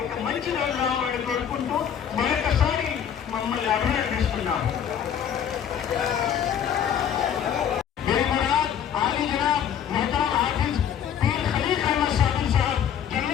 ఒక మంచి రోజు రావాలని కోరుకుంటూ మరొకసారి మమ్మల్ని అభినందిస్తున్నాం.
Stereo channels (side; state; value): right; quieter; 8.7 dB